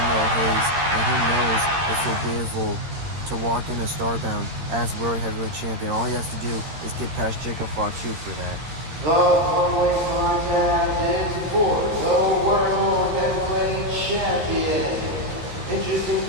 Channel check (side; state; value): left; late; 13 ms